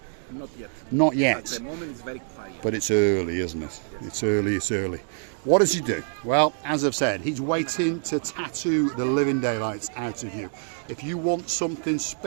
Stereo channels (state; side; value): silent; left; 61 dB below the other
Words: Not yet. Not yet. At the moment it's very quiet. But it's early, isn't it? Yes. It's early. What does he do? Well, as I've said, he's waiting to tattoo the living daylights out of you. If you want something